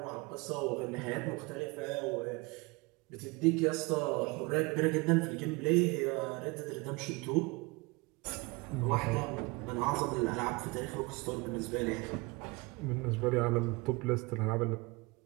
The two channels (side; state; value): left; quieter; 25.7 dB